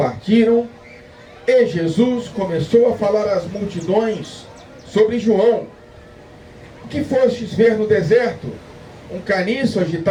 e Jesus começou a falar às multidões sobre João. O que fostes ver no deserto? Um caniço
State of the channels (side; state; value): both; identical; correlation 1.00